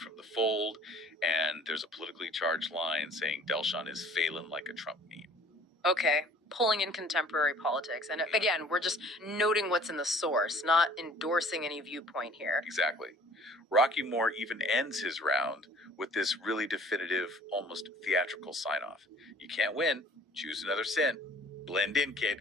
the fold, and there's a politically charged line saying Delshaun is failing like a Trump meme. Okay, pulling in contemporary politics. And again, we're just noting what's in the source, not endorsing any viewpoint here. Exactly. Rockymore even ends his round with this really definitive, almost theatrical sign-off. You can't win. Choose another sin. Blend in,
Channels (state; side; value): normal; both; correlation 0.52